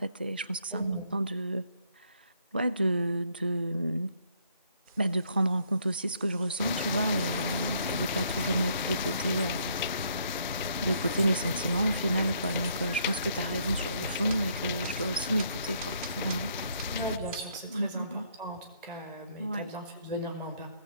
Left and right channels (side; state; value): both; inverted; correlation -0.69